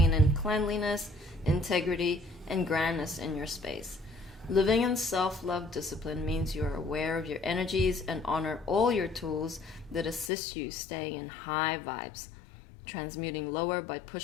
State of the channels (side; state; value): right; drops out; at 10.3 s